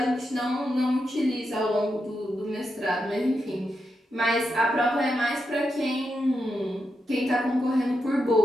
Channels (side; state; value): both; normal; correlation 0.85